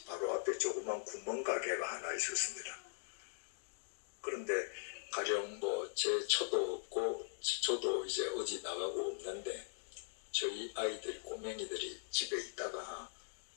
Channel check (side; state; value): right; silent; digital silence